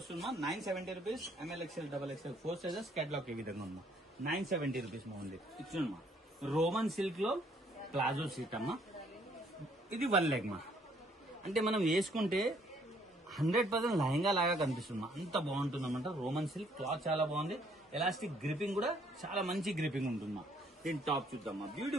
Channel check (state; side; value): normal; both; correlation 0.65